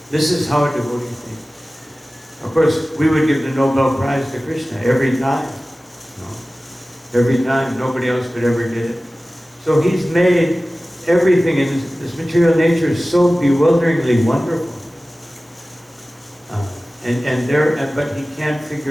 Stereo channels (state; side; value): normal; both; correlation 0.97